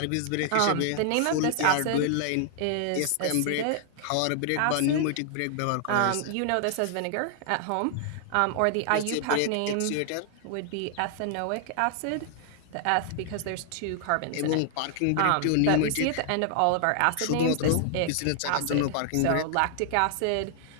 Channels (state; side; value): different; both; correlation 0.00